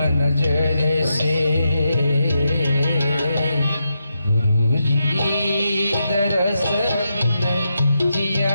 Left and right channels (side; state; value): both; inverted; correlation -0.85